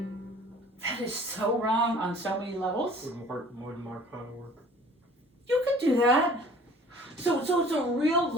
That is so wrong on so many levels. Wouldn't mark how to work. You could do that. So it's a real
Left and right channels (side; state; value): both; normal; correlation 0.49